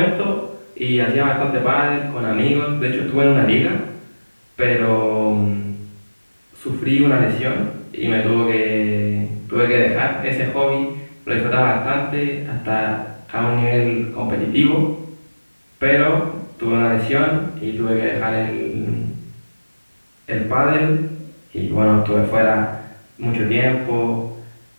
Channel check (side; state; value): both; inverted; correlation -1.00